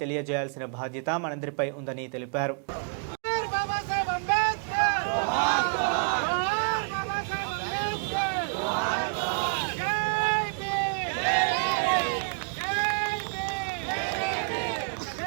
తెలియజేయాల్సిన బాధ్యత మనందరిపై ఉందని తెలిపారు.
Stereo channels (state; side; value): quieter; left; 39.0 dB